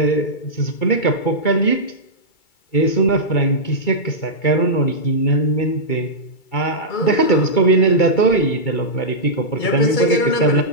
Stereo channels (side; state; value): right; late; 2.3 ms